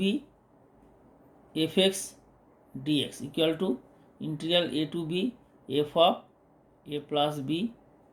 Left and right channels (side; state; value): both; identical; correlation 1.00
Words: f x dx equal to integral a to b f of a plus b